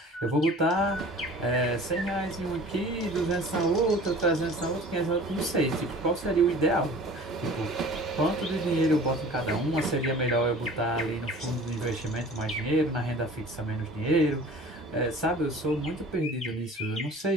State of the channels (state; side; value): normal; both; correlation 0.45